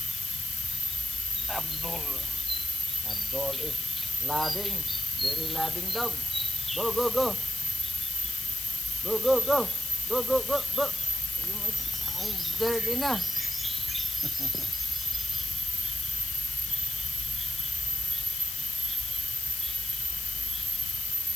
Abdul. Abdul is loving. Very loving dog. Go, go, go. Go, go, go. Go, go, go, go. You make dirty na.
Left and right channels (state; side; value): noise; left; hiss, 4 dB below the sound